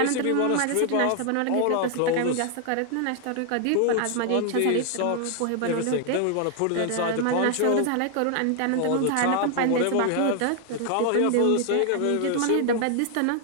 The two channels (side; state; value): both; different; correlation 0.00